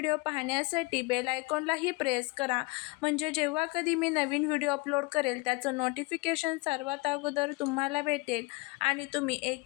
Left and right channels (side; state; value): right; quieter; 24.7 dB